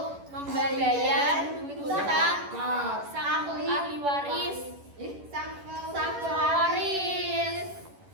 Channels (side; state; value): left; late; 11 ms